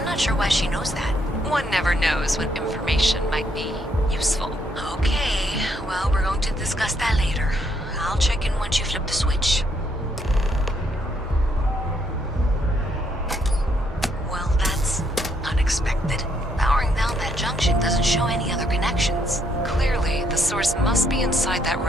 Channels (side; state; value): both; normal; correlation 0.73